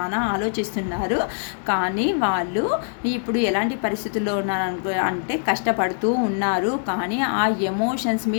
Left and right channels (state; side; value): silent; right; digital silence